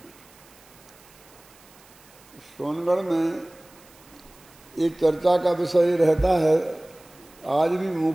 सोनगढ़ में एक चर्चा का विषय रहता है आज भी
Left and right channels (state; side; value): noise; right; hiss, 26 dB below the sound